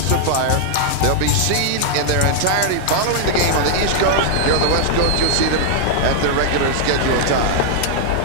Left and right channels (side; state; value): both; different; correlation -0.01